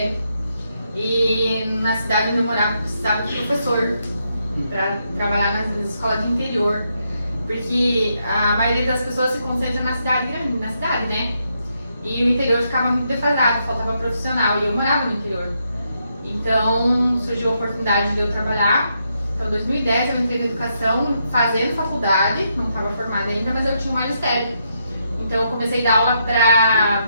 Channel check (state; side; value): inverted; both; correlation -0.79